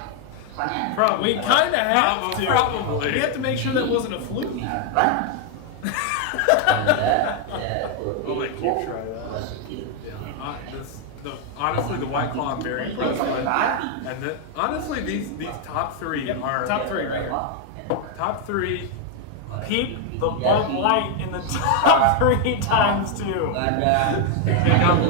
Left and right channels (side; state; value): both; different; correlation 0.00